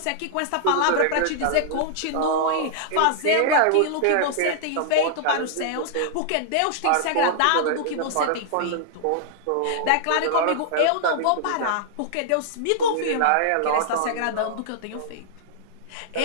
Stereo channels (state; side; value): different; both; correlation -0.01